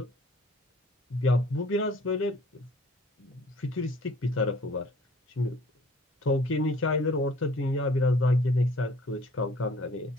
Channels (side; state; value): both; normal; correlation 0.54